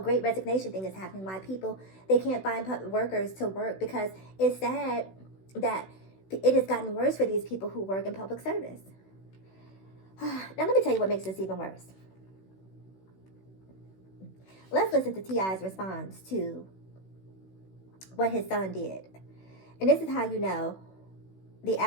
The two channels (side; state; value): right; late; 16 ms